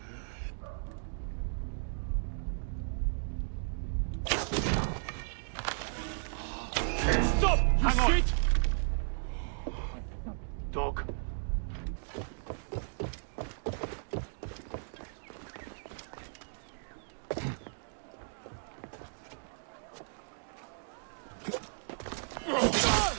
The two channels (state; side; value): silent; left; digital silence